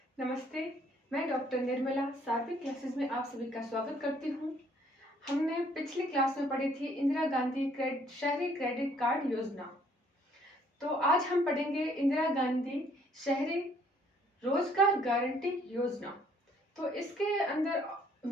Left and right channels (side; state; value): both; normal; correlation 0.63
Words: नमस्ते, मैं doctor Nirmala सार्विक classes में आप सभी का स्वागत करती हूँ। हमने पिछली क्लास में पढ़ी थी इंदिरा गांधी शहरी क्रेडिट कार्ड योजना। तो आज हम पढ़ेंगे इंदिरा गांधी शहरी रोजगार गारंटी योजना। तो इसके अंदर